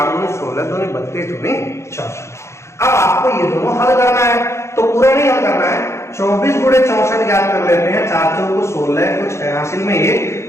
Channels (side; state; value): right; late; 0.13 ms